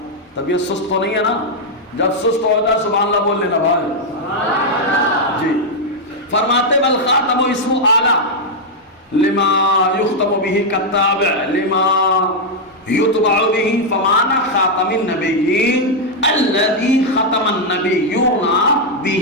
طبیعت سست تو نہیں ہے نا؟ جب سست ہو جائے سبحان اللہ بول لینا بھائی جی۔ فرماتے والخاتم اسم اعلیٰ لما یختم به کالتابع لما یتبع به، فمعنى خاتم النبیین الذي ختم النبیون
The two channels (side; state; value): both; normal; correlation -0.02